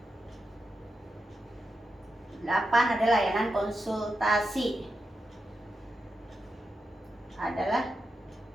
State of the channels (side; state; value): both; normal; correlation 0.88